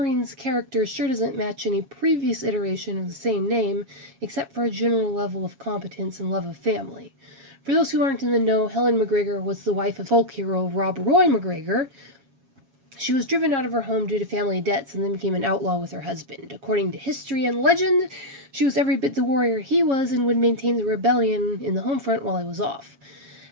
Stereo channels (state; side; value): late; left; 7.3 ms